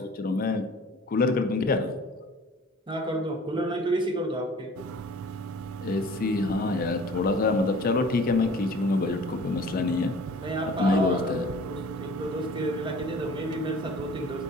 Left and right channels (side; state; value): both; normal; correlation 0.47